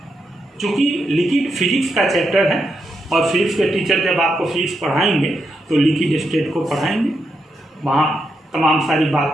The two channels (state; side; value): normal; both; correlation 0.83